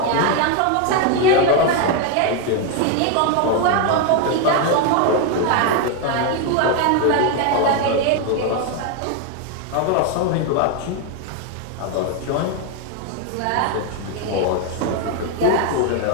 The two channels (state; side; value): different; both; correlation 0.01